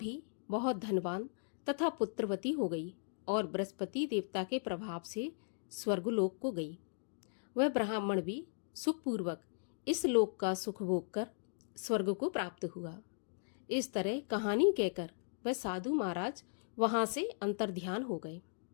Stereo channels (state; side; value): silent; right; digital silence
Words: बहुत धनवान तथा पुत्रवती हो गई और बृहस्पति देवता के प्रभाव से स्वर्गलोक को गई। वह ब्राह्मण भी सुखपूर्वक इस लोक का सुख भोग कर स्वर्ग को प्राप्त हुआ। इस तरह कहानी कहकर वह साधु महाराज वहां से अंतर्ध्यान हो गए।